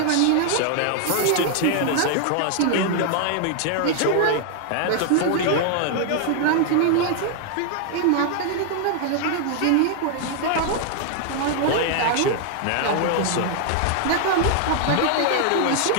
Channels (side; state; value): both; different; correlation 0.00